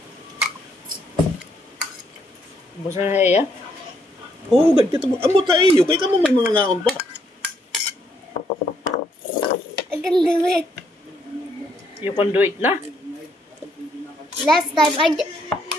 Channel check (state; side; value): normal; both; correlation 0.72